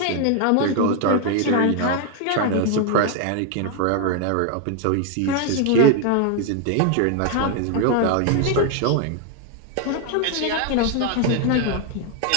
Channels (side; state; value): both; different; correlation 0.01